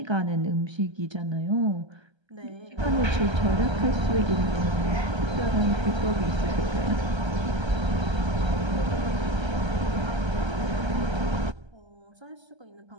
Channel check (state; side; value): late; left; 1.3 ms